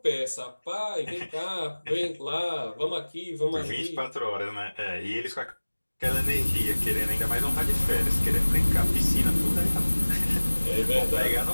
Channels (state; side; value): inverted; both; correlation -1.00